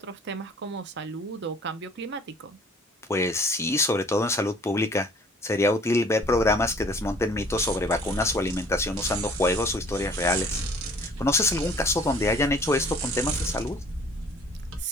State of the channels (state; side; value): normal; both; correlation 0.53